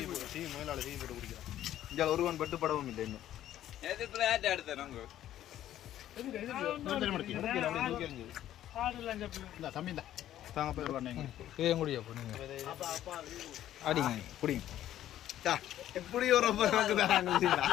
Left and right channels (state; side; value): quieter; right; 12.3 dB